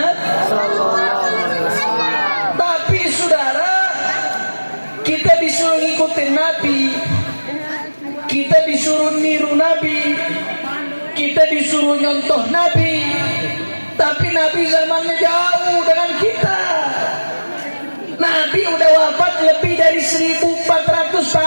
Tapi saudara, kita disuruh ngikutin Nabi, kita disuruh niru Nabi, kita disuruh nyontoh Nabi, tapi Nabi zamannya jauh dengan kita. Nabi udah wafat lebih dari 1400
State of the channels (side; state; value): both; inverted; correlation -1.00